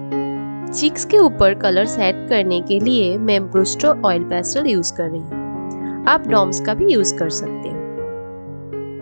चीक्स के ऊपर कलर्स ऐड करने के लिए मैं ब्रूस्टर ऑयल पेस्टल यूज कर रही हूँ। आप डॉम्स का भी यूज कर सकते हैं।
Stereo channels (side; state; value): both; inverted; correlation -1.00